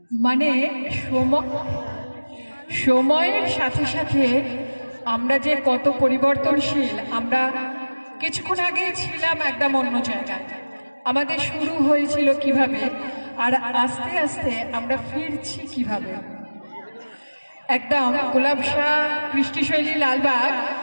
মানে সময়ের সাথে সাথে আমরা যে কত পরিবর্তনশীল। আমরা কিছুক্ষণ আগে ছিলাম একদম অন্য জায়গায়, আমাদের শুরু হয়েছিল কিভাবে আর আস্তে আস্তে আমরা ফিরছি কিভাবে। একদম গোলাপ শাহ কৃষ্টিশৈলী লালবাগ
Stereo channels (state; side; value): inverted; both; correlation -1.00